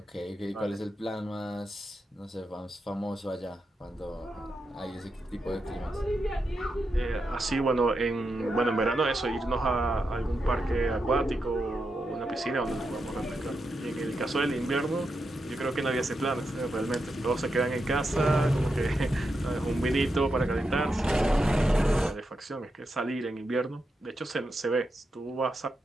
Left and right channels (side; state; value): both; normal; correlation 0.86